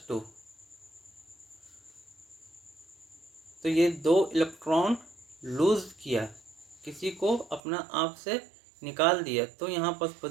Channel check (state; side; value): drops out; left; at 7.6 s